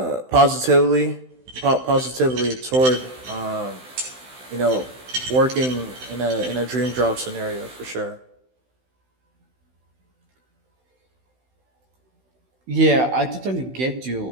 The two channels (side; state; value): left; late; 16 ms